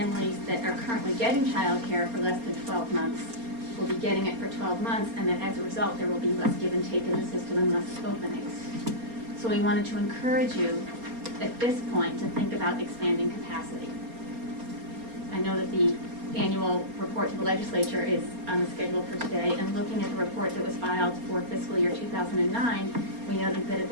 that are currently getting childcare for less than 12 months will be getting it for 12 months, and that as a result there will be less give and take in the system and less openings. So we wanted to encourage you at this point to think about expanding capacity. I know that the annual report to the legislature is on the schedule for today, and looking at the report that was filed for fiscal year 2009, we noted that at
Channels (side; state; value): left; late; 4.3 ms